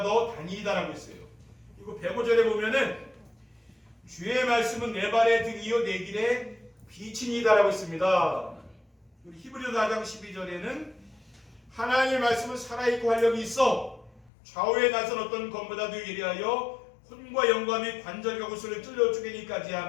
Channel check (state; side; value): drops out; right; at 14.3 s